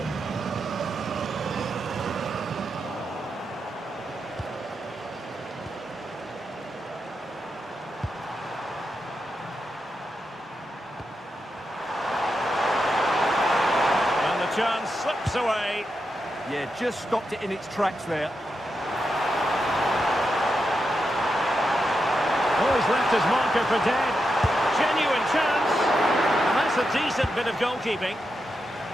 And the chance slips away. Yeah, just stopped it in its tracks there. Oh, he's left his marker for dead. Genuine chance. And that's a decent bit of goalkeeping.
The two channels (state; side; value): normal; both; correlation 0.86